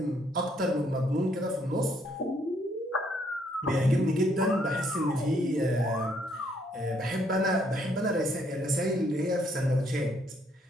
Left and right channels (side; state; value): both; normal; correlation 0.69